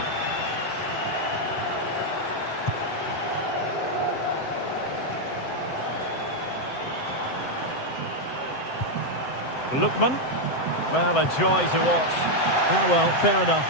Lookman. Well, a joy to watch. Ah, well, fair enough.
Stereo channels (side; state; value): right; late; 7.8 ms